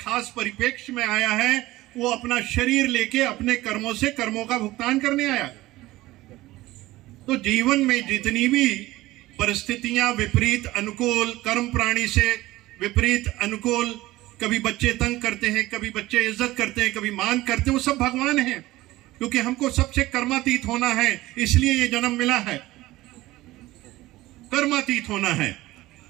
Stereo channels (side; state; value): left; quieter; 17.8 dB